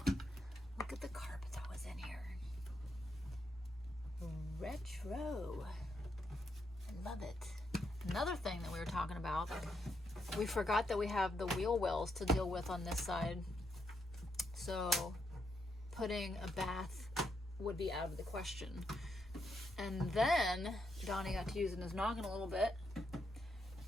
Look at the carpet that was in here. Retro. I love it. Another thing that we were talking about, we forgot that we have the wheel wells to deal with on this side. So putting a bath would be out of the question. And then Donnie got to using his noggin a little bit.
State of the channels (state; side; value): normal; both; correlation 0.80